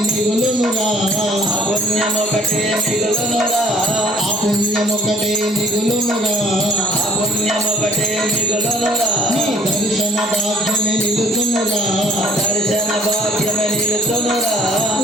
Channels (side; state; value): both; normal; correlation 0.57